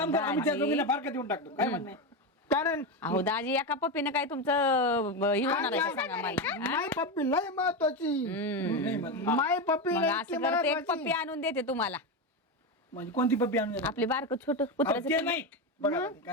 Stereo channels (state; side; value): normal; both; correlation 0.14